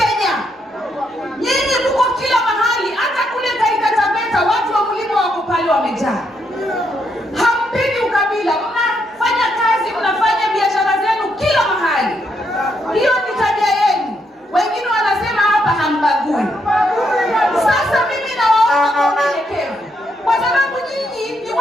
Nyinyi mko kila mahali, hata kule Taita Taveta watu wa mlima wako pale wamejaa. Hampendi ukabila, mnafanya kazi, mnafanya biashara zenu kila mahali. Hiyo ni tabia yenu. Wengine wanasema hapa hambagui. Sasa mimi nawaomba kwa unyenyekevu. Kwa sababu nyinyi ni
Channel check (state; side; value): normal; both; correlation 0.77